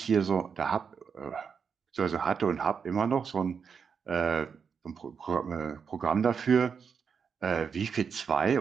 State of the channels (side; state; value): left; quieter; 6.4 dB